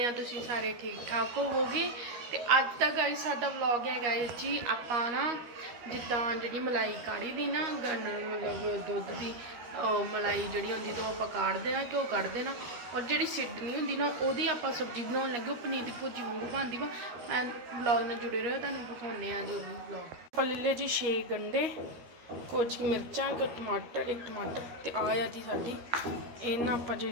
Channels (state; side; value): late; left; 13 ms